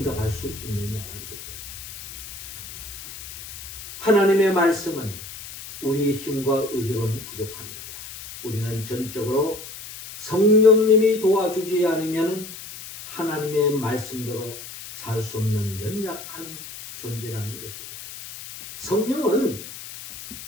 수 있느냐는 거죠. 하나님의 말씀은 우리 힘과 의지로는 부족합니다. 우리는 전적으로 성령님이 도와주지 않으면 하나님의 말씀대로 살 수 없는 연약한 존재라는 것입니다. 성령은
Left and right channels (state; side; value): noise; left; hiss, 12 dB below the sound